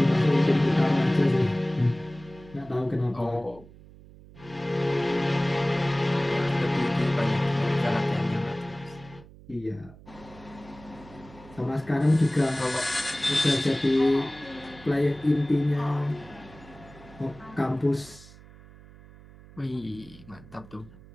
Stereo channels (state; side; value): noise; right; hum, 21 dB below the sound